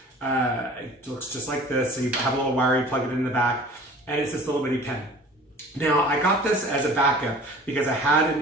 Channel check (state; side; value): normal; both; correlation 0.45